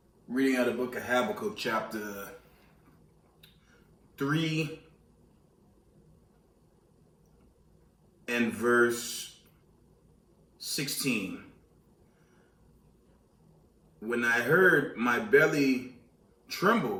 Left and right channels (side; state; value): both; identical; correlation 1.00